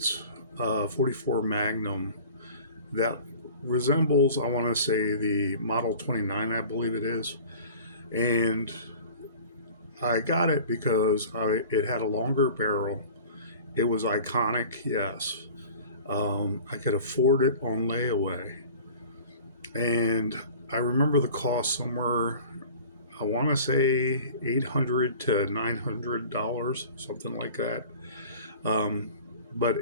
44 Magnum that resembles, I want to say, the Model 29, I believe it is. And I got it because it had a longer barrel. It was iconic, yes. I could afford it on layaway. And I remember the cost somewhere, I want to say $800 to $900, something like that. But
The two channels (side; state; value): both; inverted; correlation -0.42